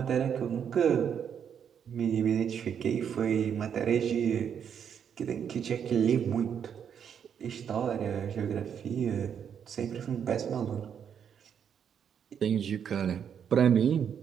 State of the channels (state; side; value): quieter; left; 8.1 dB